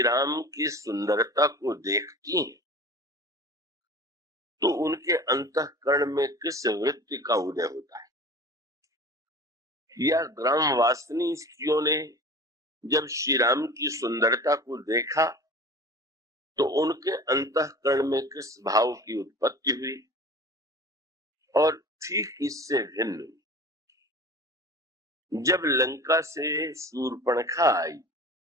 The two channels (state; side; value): normal; both; correlation 0.39